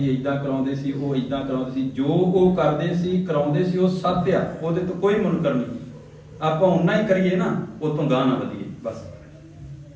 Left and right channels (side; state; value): both; identical; correlation 1.00